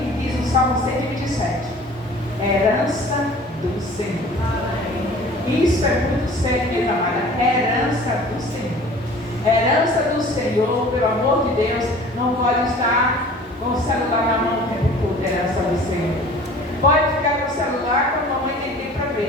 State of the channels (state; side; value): normal; both; correlation 0.46